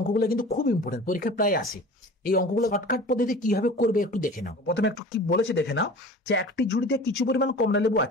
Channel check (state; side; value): normal; both; correlation 0.40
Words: কিন্তু খুব ইম্পর্টেন্ট, পরীক্ষায় প্রায় আসে। এই অঙ্কগুলো শর্টকাট পদ্ধতি কিভাবে করবে একটু দেখে নাও। প্রথমে একটু কি বলেছে দেখে নাও, যে একটি ঝুড়িতে কিছু পরিমাণ কমলা লেবু